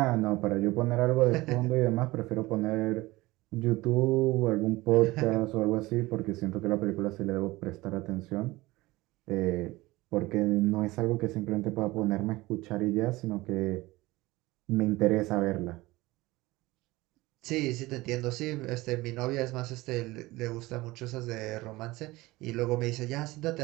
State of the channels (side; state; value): left; quieter; 20.1 dB